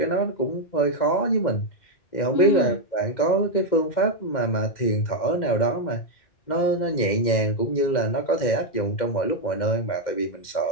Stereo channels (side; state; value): right; late; 2.1 ms